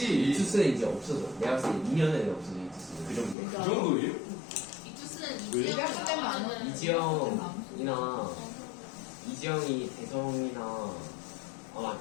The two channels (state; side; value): drops out; right; at 3.4 s